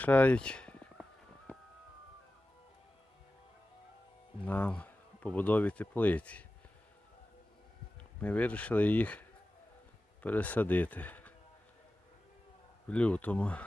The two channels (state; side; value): normal; both; correlation 0.94